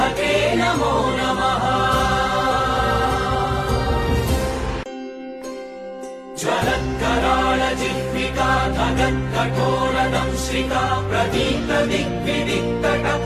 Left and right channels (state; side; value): identical; both; correlation 1.00